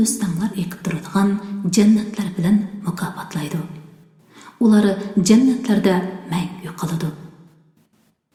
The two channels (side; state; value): both; identical; correlation 1.00